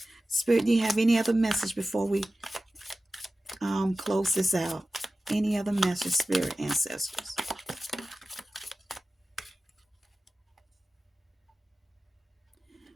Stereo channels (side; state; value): both; normal; correlation 0.95